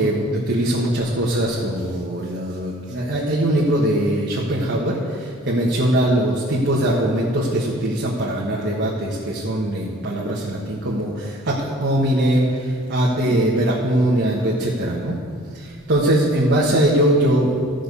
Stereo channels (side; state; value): both; normal; correlation 0.51